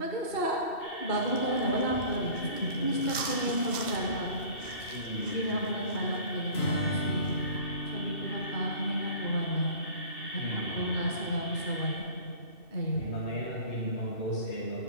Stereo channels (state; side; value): late; right; 2.7 ms